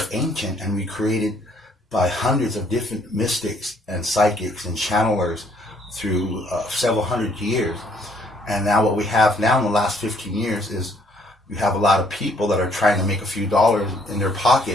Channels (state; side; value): normal; both; correlation 0.65